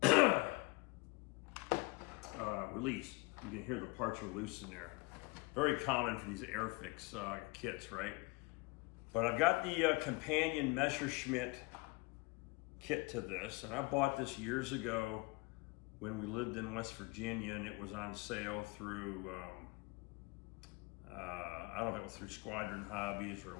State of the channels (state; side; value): quieter; right; 25.7 dB